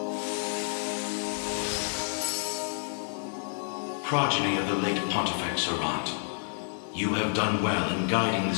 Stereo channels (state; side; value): silent; right; 58 dB below the other